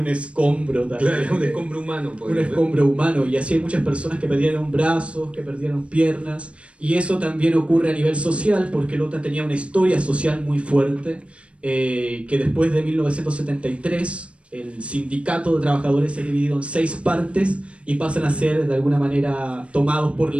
escombro también. Claro, un escombro humano. Un escombro humano, y así hay muchas personas que perdieron brazos, que perdieron piernas, y eso también ocurre a nivel social porque Lota tenía una historia social muy fuerte, que después de 1973 el sindicato de trabajadores se ha dividido en 6 partes y pasan a ser de alguna manera tomados por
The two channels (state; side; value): late; left; 0.060 ms